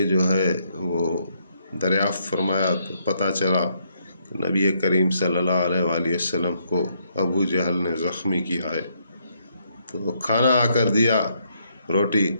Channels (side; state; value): both; inverted; correlation -0.73